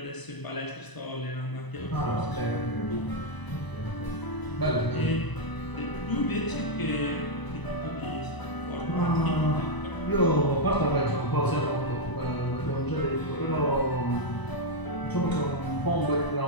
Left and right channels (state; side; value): late; right; 1.0 ms